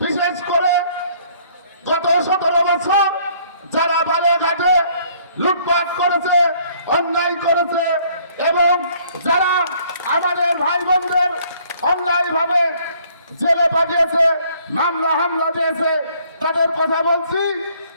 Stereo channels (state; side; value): inverted; both; correlation -0.61